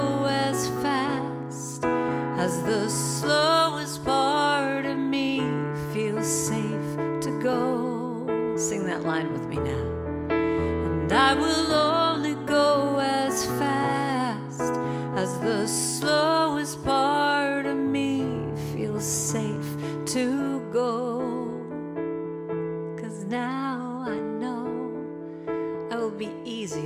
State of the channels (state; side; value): identical; both; correlation 1.00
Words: as fast as the slowest part of me feels safe to go. Sing that line with me now. And I will only go as fast as the slowest part of me feels safe to go. 'Cause now I know I will be